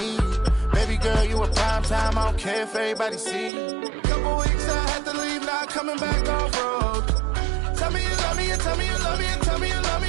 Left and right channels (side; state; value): left; drops out; at 3.5 s